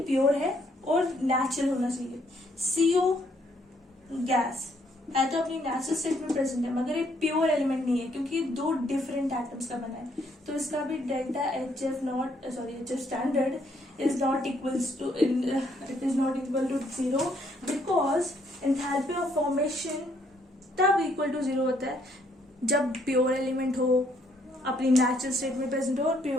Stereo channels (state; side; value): normal; both; correlation 0.69